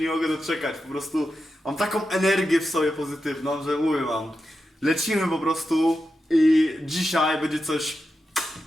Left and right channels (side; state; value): both; normal; correlation 0.89